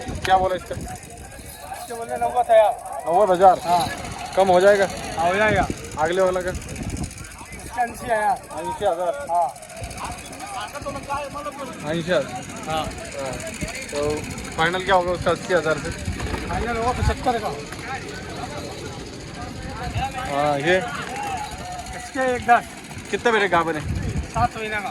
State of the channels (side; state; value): both; identical; correlation 1.00